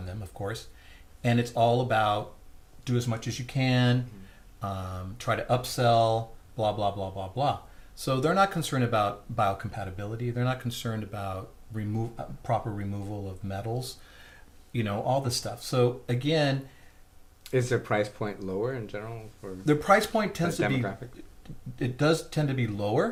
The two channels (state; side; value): identical; both; correlation 1.00